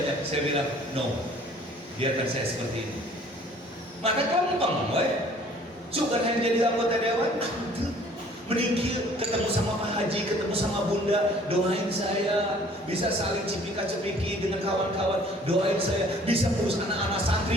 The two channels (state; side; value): normal; both; correlation 0.54